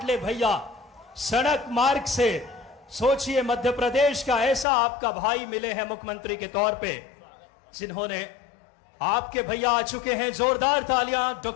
भैया सड़क मार्ग से। सोचिए, मध्य प्रदेश का ऐसा आपका भाई मिले हैं मुख्यमंत्री के तौर पे, जिन्होंने आपके भैया आ चुके हैं। जोरदार तालियां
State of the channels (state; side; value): drops out; right; at 4.7 s